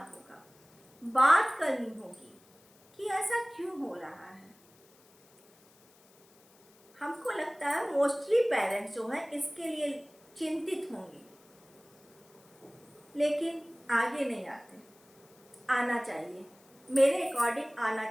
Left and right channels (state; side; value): noise; left; hiss, 29 dB below the sound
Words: बात करनी होगी कि ऐसा क्यों हो रहा है। हमको लगता है मोस्टली पेरेंट्स जो हैं इसके लिए चिंतित होंगे, लेकिन आगे नहीं आते। आना चाहिए, मेरे अकॉर्डिंग आना